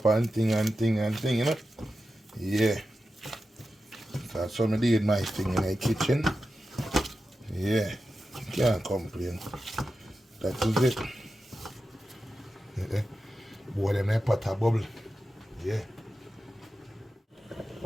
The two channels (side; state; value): both; normal; correlation 0.91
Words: and thing, you know? Yeah. So that's how I did my thing in the kitchen. Yeah. Can't complain. That is it. Yeah. Boy, them there pot a bubble. Yeah.